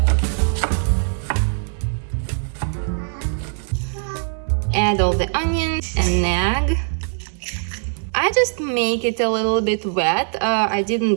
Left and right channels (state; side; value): silent; left; digital silence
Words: Add all the onions and egg. I just make it a little bit wet. I